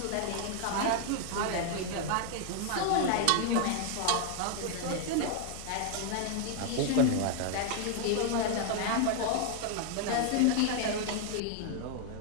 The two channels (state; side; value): different; both; correlation 0.00